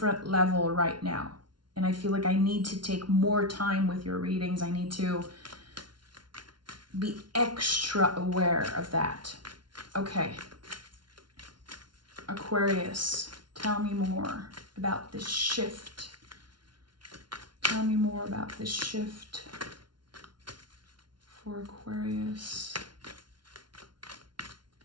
level right now. And I feel like I need to take more time with your readings. I need to be extra aware of that. Okay. Aquarius, tell me more about this shift. Tell me more about this shift for Aquarius.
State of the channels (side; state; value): left; late; 0.71 ms